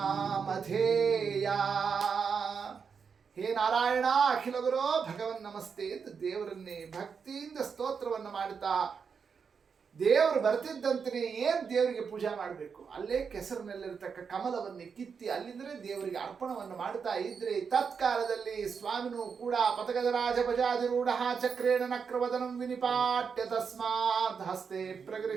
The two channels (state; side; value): quieter; left; 6.1 dB